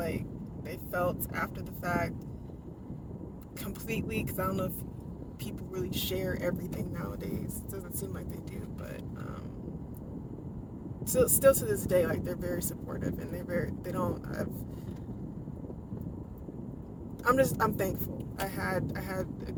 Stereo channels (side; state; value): both; identical; correlation 1.00